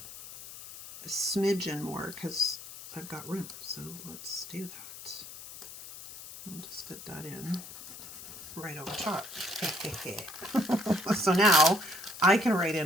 a smidgen more because I've got room. So let's do that. I'll just fit that in right over top. So now I can write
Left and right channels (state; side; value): noise; left; hiss, 13 dB below the sound